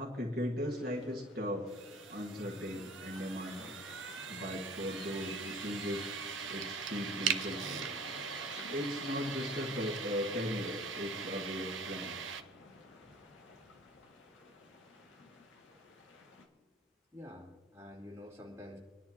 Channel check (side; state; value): both; normal; correlation 0.46